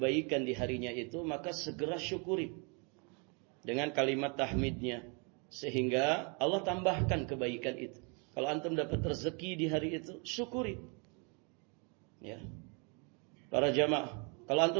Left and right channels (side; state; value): left; quieter; 34.6 dB